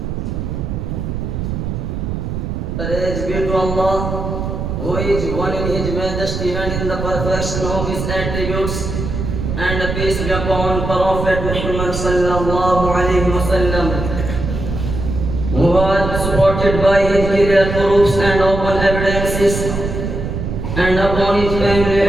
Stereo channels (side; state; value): right; noise; rumble, 4 dB below the sound